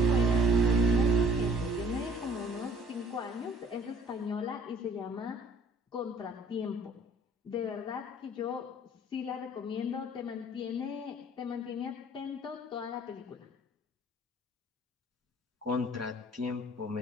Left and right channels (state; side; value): normal; both; correlation 0.56